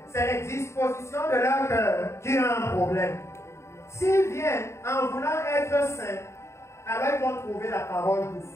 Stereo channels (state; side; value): late; right; 0.13 ms